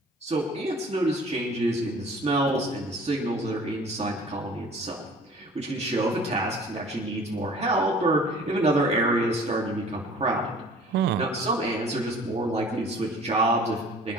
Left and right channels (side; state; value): both; normal; correlation 0.48